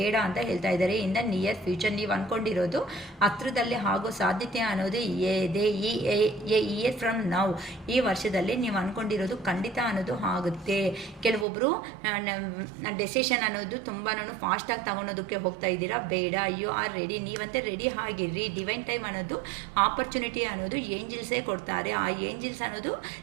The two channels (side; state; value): left; drops out; at 11.5 s